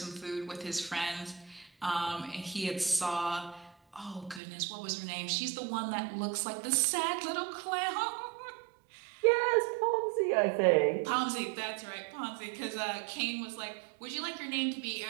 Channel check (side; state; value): left; drops out; at 4.4 s